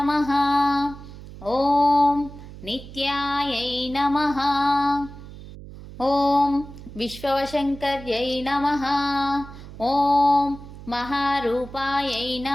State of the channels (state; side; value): noise; right; hum, 15 dB below the sound